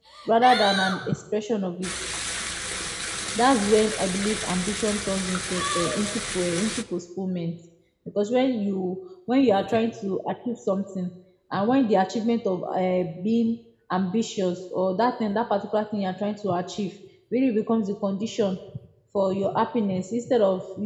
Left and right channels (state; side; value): identical; both; correlation 1.00